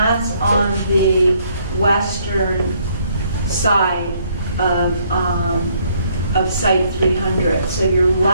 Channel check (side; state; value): both; inverted; correlation -0.68